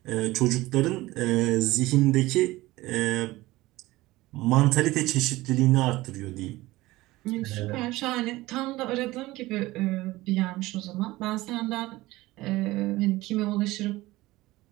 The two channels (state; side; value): quieter; left; 18.8 dB